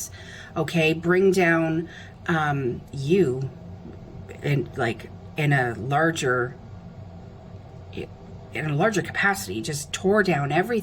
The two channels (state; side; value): identical; both; correlation 1.00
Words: okay? Bring down you in a larger capacity, just tore down